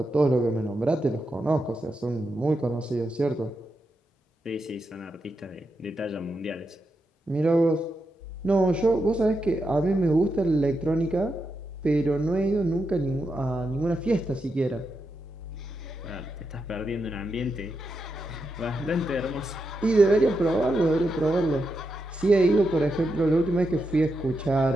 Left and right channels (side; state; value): both; normal; correlation 0.85